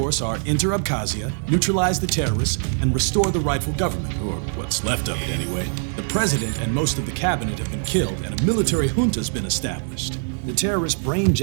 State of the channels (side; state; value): left; silent; 57 dB below the other